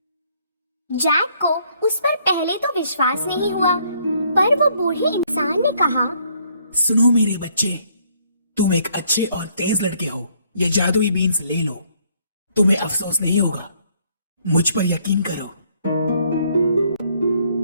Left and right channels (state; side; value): inverted; both; correlation -0.66